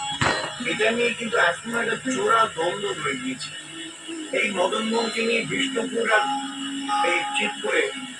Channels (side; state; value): both; identical; correlation 1.00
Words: এটা নিয়ে কিন্তু এখন একটা চোরা দ্বন্দ্ব রয়ে গিয়েছে। এই মদন মোহনকে নিয়ে বিষ্ণুপুর আর এই চিৎপুরে